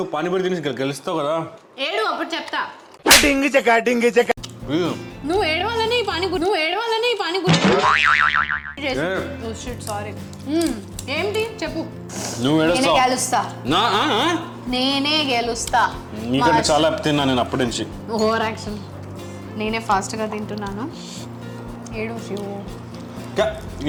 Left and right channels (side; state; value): both; identical; correlation 1.00